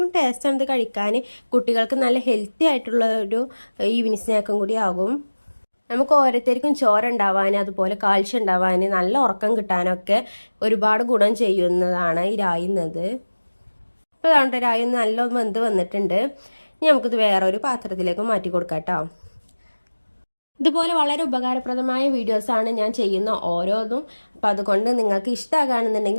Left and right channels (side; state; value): both; inverted; correlation -1.00